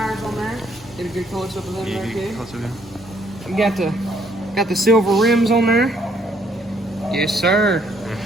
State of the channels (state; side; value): normal; both; correlation 0.67